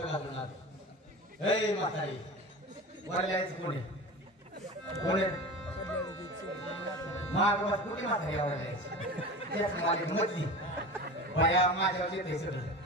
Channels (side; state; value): both; normal; correlation 0.32